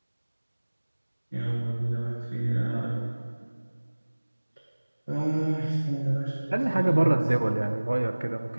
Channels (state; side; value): inverted; both; correlation -1.00